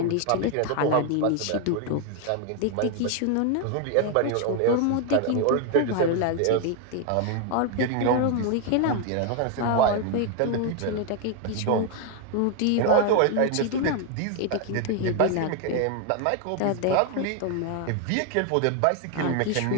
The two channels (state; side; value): different; both; correlation 0.01